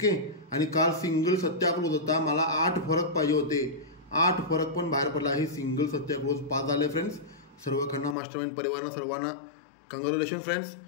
आणि काल सिंगल सत्याग्रह होता, मला 8 फरक पाहिजे होते, 8 फरक पण बाहेर पडला आहे. सिंगल सत्याग्रह पास झाले फ्रेंड्स. सर्व खन्ना मास्टरमाइंड परिवारांना सर्वांना कॉंग्रॅच्युलेशन फ्रेंड्स.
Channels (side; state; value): right; drops out; at 8.2 s